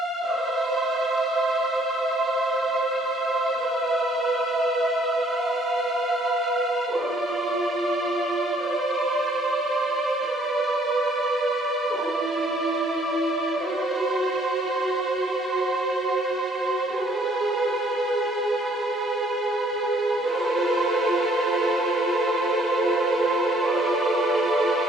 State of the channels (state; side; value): normal; both; correlation 0.62